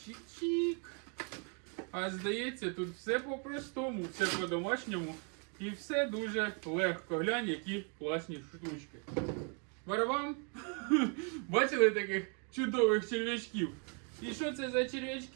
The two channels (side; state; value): left; quieter; 38.8 dB